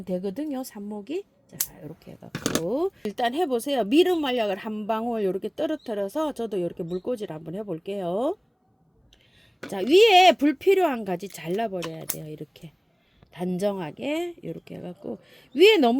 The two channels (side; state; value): both; identical; correlation 1.00